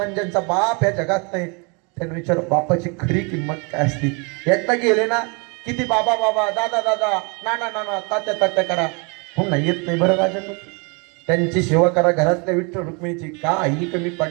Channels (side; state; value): left; quieter; 32.2 dB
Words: ज्यांचा बाप या जगात नाही त्यांना विचार बापाची खरी किंमत काय असते. एकदा गेले ना किती बाबा बाबा दादा दादा नाना नाना तात्या तात्या करा पुन्हा येत नाही. बरं राजन त्यांची सेवा करा घरातल्या विठ्ठल रुक्मिणीची का आई कमी